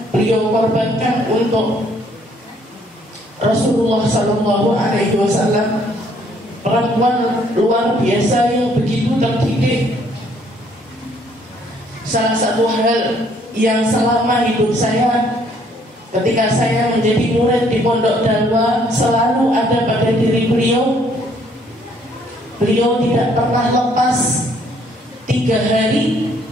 beliau korbankan untuk Rasulullah Sallallahu Alaihi Wasallam. Perempuan luar biasa yang begitu terdidik. Salah satu hal yang selama hidup saya, ketika saya menjadi murid di Pondok Dalwa, selalu ada pada diri beliau. Beliau tidak pernah lepas 3 hari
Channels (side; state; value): both; normal; correlation 0.65